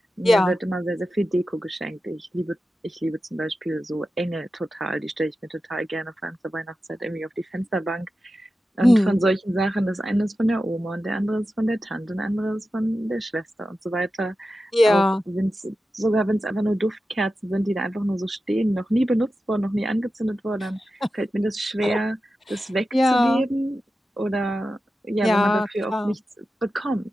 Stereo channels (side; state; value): both; normal; correlation 0.92